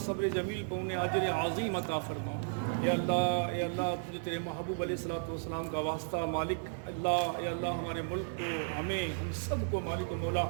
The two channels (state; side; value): silent; left; digital silence